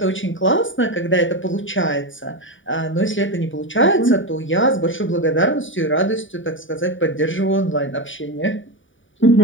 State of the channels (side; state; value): right; late; 0.56 ms